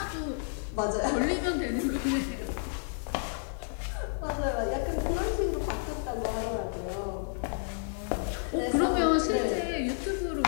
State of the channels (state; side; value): silent; right; digital silence